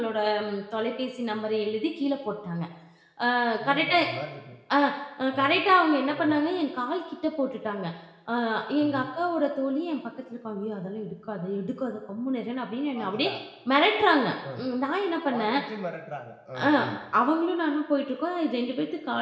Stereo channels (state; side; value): identical; both; correlation 1.00